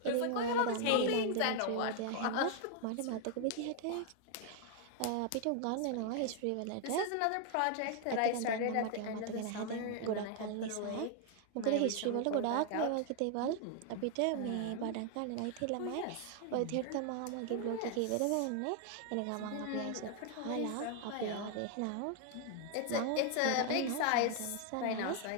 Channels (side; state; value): both; different; correlation 0.00